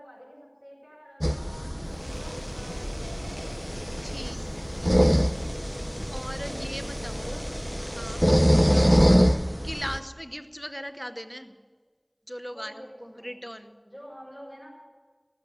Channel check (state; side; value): identical; both; correlation 1.00